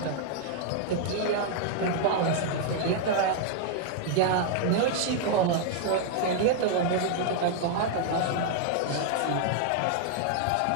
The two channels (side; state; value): both; different; correlation 0.00